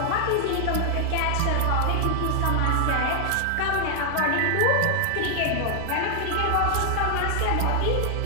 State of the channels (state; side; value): different; both; correlation 0.00